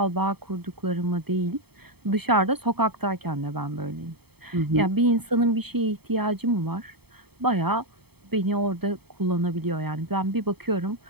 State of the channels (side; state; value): left; late; 0.97 ms